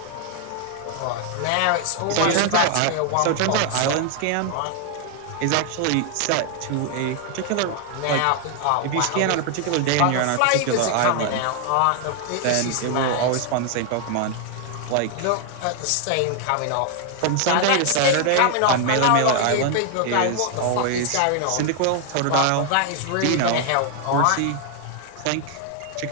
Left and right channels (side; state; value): both; different; correlation 0.00